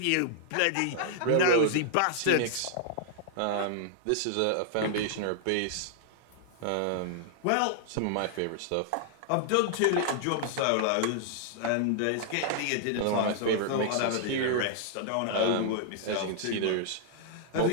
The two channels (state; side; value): different; both; correlation 0.00